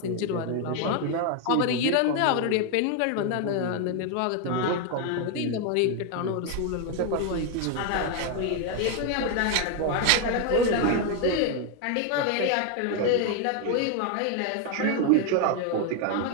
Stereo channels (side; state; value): both; different; correlation 0.01